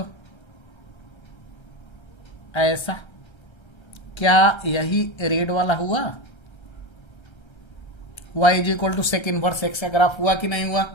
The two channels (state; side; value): late; right; 1.3 ms